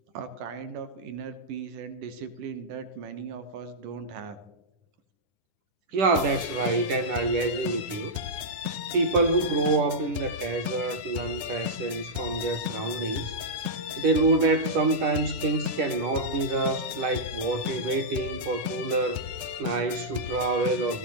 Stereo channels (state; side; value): late; left; 9.7 ms